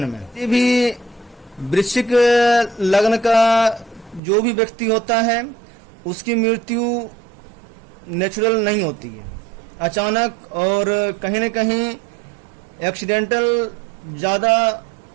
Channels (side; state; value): left; drops out; at 4.2 s